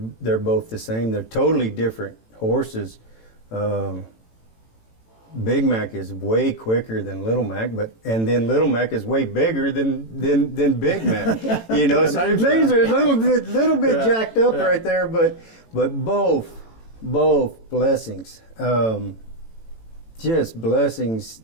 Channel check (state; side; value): late; right; 18 ms